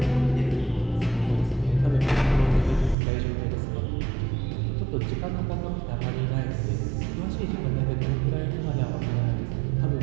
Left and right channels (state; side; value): drops out; left; at 3.0 s